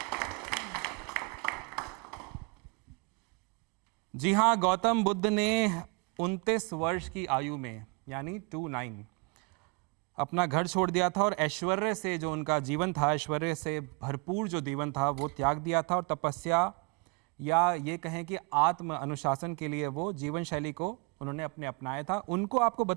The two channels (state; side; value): quieter; left; 30.5 dB